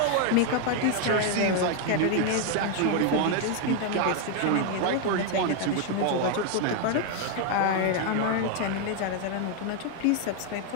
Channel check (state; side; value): different; both; correlation 0.01